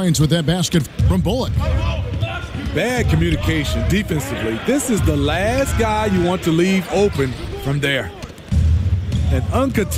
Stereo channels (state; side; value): identical; both; correlation 1.00